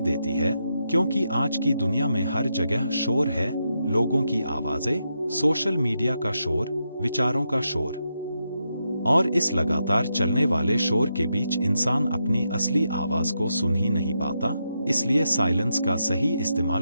देती है। क्योंकि आज की दुनिया में हर जगह शोर है, लोगों की आवाजें, सोशल मीडिया का शोर, विचारों का शोर, और इस लगातार चलने वाले शोर के बीच इंसान अपनी असली आवाज को सुन ही नहीं पाता। इसलिए साइलेंस का सही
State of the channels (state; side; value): inverted; both; correlation -0.84